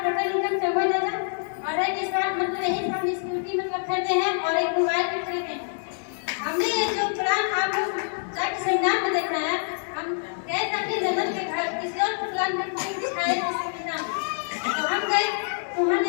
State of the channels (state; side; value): silent; right; digital silence